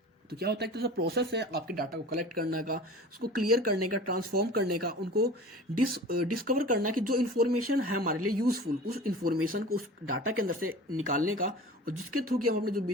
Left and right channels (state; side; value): normal; both; correlation 0.39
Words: तो क्या होता है, एक प्रोसेस है आपके डाटा को कलेक्ट करने का, उसको क्लियर करने का, ट्रांसफॉर्म करने का, उनको डिस्कवर करना कि जो इन्फॉर्मेशन है हमारे लिए यूजफुल, उस इन्फॉर्मेशन को उस डाटा के अंदर से निकालने का, और जिसके थ्रू कि हम अपने जो